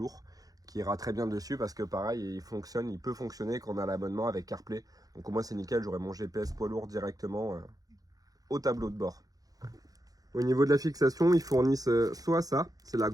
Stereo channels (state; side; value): late; left; 0.18 ms